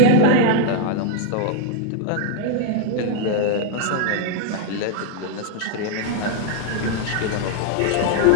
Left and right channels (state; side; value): different; both; correlation 0.00